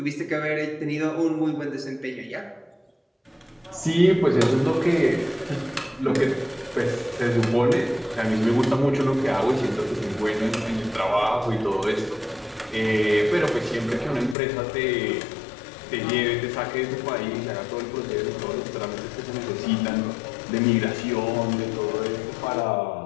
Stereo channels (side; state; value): right; drops out; at 14.4 s